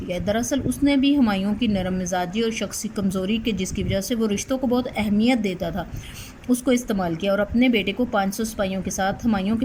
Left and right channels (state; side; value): identical; both; correlation 1.00